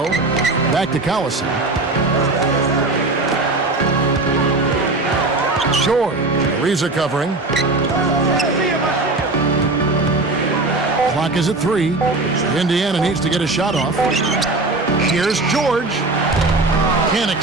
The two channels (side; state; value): left; quieter; 3.2 dB